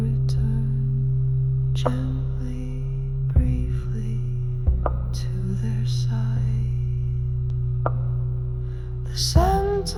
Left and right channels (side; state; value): both; identical; correlation 1.00